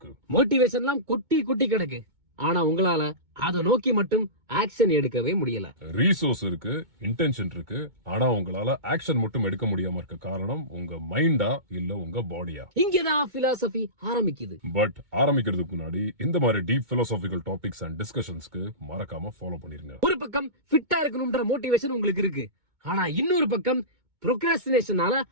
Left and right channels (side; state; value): left; late; 2.2 ms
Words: மோட்டிவேஷன்லாம் கொட்டி கொட்டி கிடக்கு. ஆனா உங்களால அதை நோக்கி மட்டும் ஆக்ஷன் எடுக்கவே முடியல. ரீசோர்ஸ் இருக்கு, இன்டென்ஷன் இருக்கு, ஆனா உங்களால ஆக்ஷன் மட்டும் எடுக்க முடியாம இருக்க காரணம் உங்க மைண்டா இல்ல உங்க பாடியா? இங்கதான் பிலாசபி ஆரம்பிக்குது. பட் ஆரம்பிக்கிறதுக்கு முன்னாடி இந்த மாதிரி டீப் பிலாசபிக்கல் டாபிக்ஸ் அண்ட் டிஸ்கஷன்ஸ்க்கு மறக்காம ஃபாலோ பண்ணிருங்க. ஒரு பக்கம் ஃபிட்டா இருக்கணும்ன்ற மோட்டிவேஷன் உங்களுக்கு இருக்கு, ஆனா இன்னொரு பக்கம் ப்ரோக்ராஸ்டினேஷனால